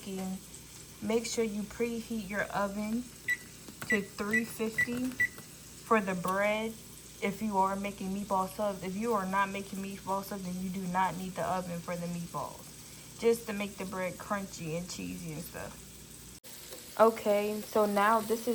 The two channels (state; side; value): identical; both; correlation 1.00